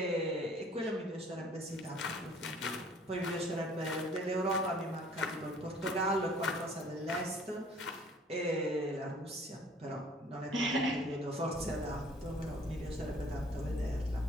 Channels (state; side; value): normal; both; correlation 0.54